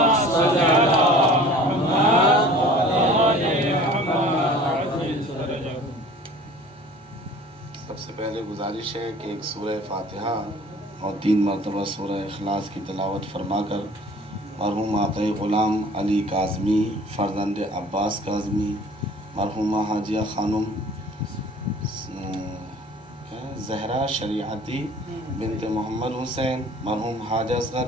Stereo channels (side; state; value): both; normal; correlation 0.47